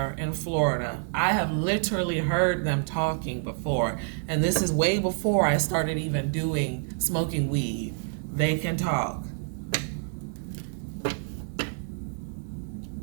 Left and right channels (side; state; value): left; silent; 60 dB below the other